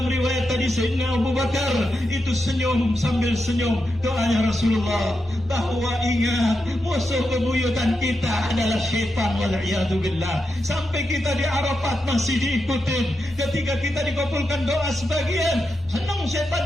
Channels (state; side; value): normal; both; correlation 0.87